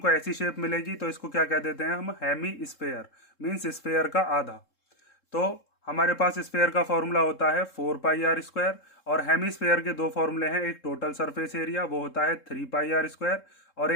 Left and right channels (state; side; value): late; right; 3.7 ms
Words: ऐसी शेप मिलेगी, तो इसको क्या कह देते हैं हम, हेमी स्फेयर, मीन्स स्फेयर का आधा। तो हमारे पास स्फेयर का फॉर्मूला होता है 4πr²। और हेमीस्फेयर के दो फॉर्मूले हैं, एक टोटल सरफेस एरिया वो होता है 3πr², और